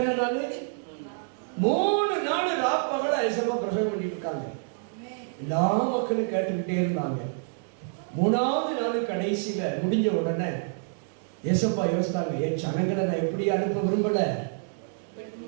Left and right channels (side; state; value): left; silent; digital silence